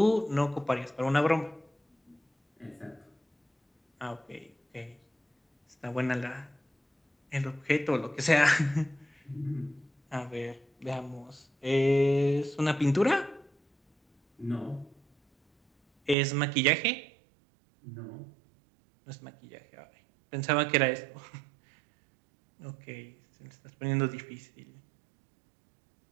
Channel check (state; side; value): drops out; left; at 16.2 s